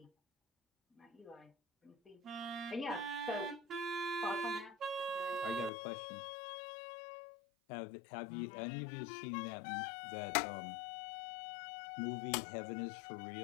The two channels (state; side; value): drops out; right; at 5.7 s